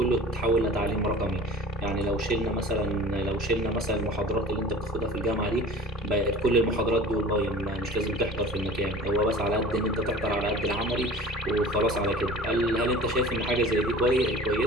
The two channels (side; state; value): both; normal; correlation 0.42